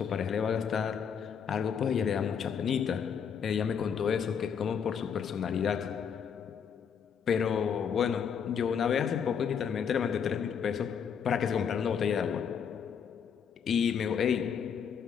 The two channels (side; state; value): right; quieter; 7.3 dB